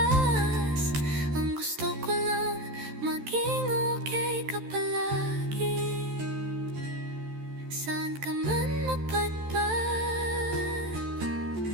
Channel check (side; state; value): left; late; 14 ms